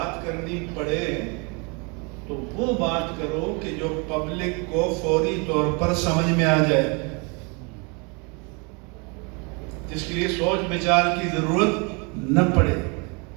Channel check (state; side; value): quieter; left; 32.0 dB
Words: کرنی پڑے تو وہ بات کرو کہ جو پبلک کو فوری طور پر سمجھ میں آ جائے، جس کے لیے سوچ بچار کی ضرورت نہ پڑے۔